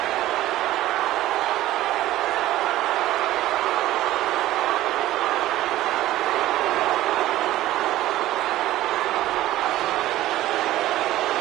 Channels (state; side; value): quieter; left; 15.1 dB